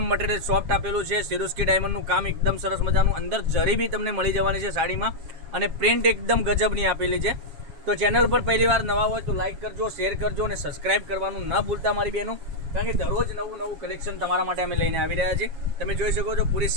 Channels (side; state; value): left; late; 7.2 ms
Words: મટીરિયલ સોફ્ટ આપેલું છે. સિરોસ્કી ડાયમંડનું કામ એકદમ સરસ મજાનું, અંદર જરી બી તમને મળી જવાની છે સાડીમાં, અને પ્રિન્ટ એકદમ ગજબની આપેલી છે. તો ચેનલ પર પહેલી વાર નવા હોય તો લાઇક કરજો, શેર કરજો અને સબસ્ક્રાઇબ કરવાનું ન ભૂલતા મારી બહેનો, કારણ કે દરરોજ નવું કલેક્શન તમારા માટે અમે લઈને આવી રહ્યા છીએ. તમે જોઈ શકો છો પૂરી